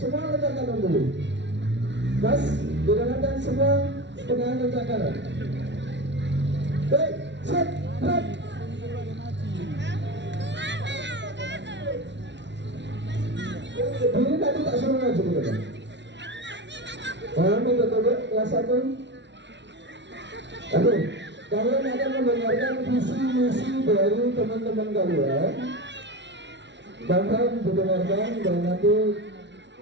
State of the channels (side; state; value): left; late; 0.51 ms